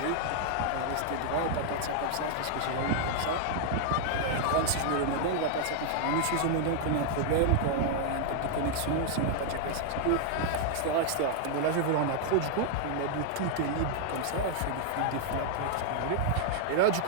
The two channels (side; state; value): both; different; correlation 0.00